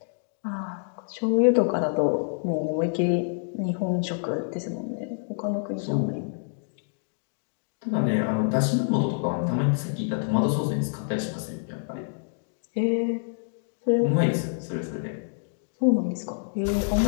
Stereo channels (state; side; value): silent; right; digital silence